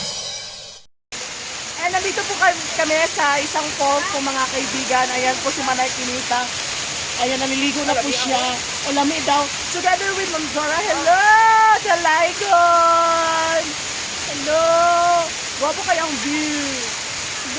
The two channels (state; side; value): identical; both; correlation 1.00